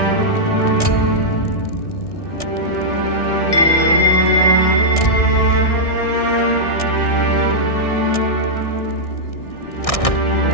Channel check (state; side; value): late; right; 1.6 ms